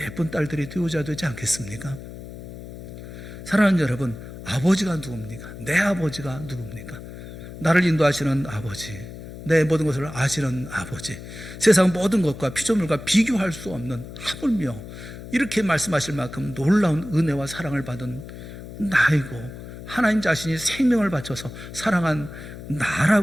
딸들이 되어야 되지 않겠습니까? 사랑하는 여러분, 아버지가 누굽니까? 내 아버지가 누굽니까? 나를 인도하시는 아버지, 내 모든 것을 아시는 아버지, 세상 모든 것과 피조물과 비교할 수 없는, 하물며 이렇게 말씀하실 만큼 놀라운 은혜와 사랑을 받은 나이고, 하나님 자신이 생명을 바쳐서 사랑한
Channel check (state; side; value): noise; left; hum, 12 dB below the sound